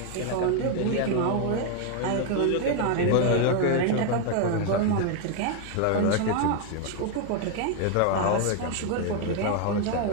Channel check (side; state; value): both; different; correlation 0.01